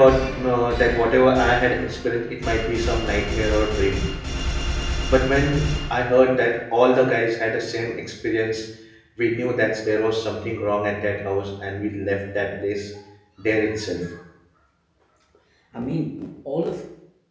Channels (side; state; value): both; identical; correlation 1.00